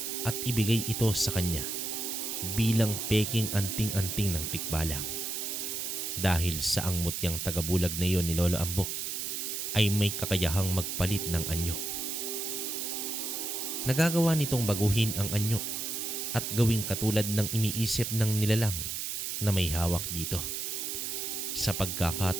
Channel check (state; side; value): noise; right; hiss, 3 dB below the sound